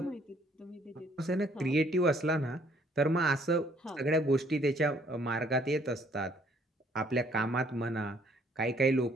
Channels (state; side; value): normal; both; correlation 0.63